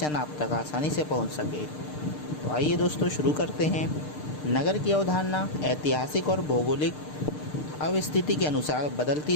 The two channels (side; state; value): right; late; 6.6 ms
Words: आप तक आसानी से पहुँच सके। तो आइए दोस्तों, शुरू करते हैं। नगर की अवधारणा ऐतिहासिक और भौगोलिक अवस्थिति के अनुसार बदलती